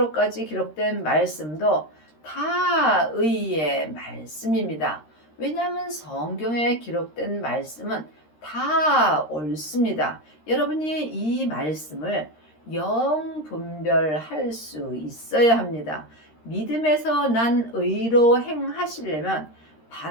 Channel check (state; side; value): late; right; 13 ms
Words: 기록된 말씀도 다 의의 말씀입니다. 왜냐하면 성경에 기록된 말씀은 다 옳습니다. 여러분이 이 말씀을 영분별할 수 있어야 합니다. 믿음에서 난 의로 행하시려면